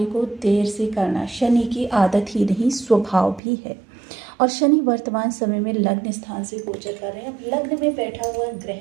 को देर से करना शनि की आदत ही नहीं, स्वभाव भी है। और शनि वर्तमान समय में लग्न स्थान से गोचर कर रहे हैं। अब लग्न में बैठा हुआ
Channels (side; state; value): left; drops out; at 3.4 s